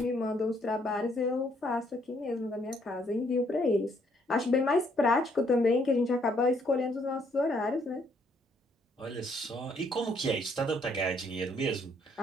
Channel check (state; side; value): normal; both; correlation 0.68